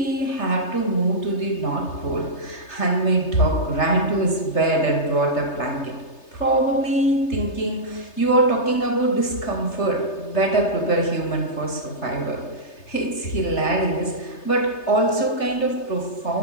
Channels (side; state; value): right; late; 3.3 ms